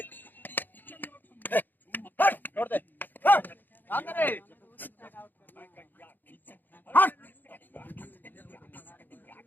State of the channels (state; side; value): late; right; 0.089 ms